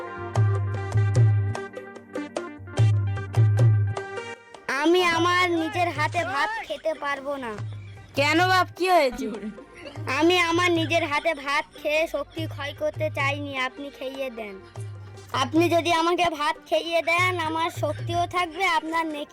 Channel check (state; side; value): identical; both; correlation 1.00